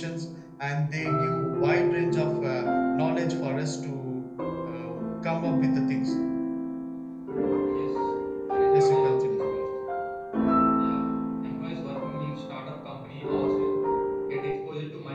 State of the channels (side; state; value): both; identical; correlation 1.00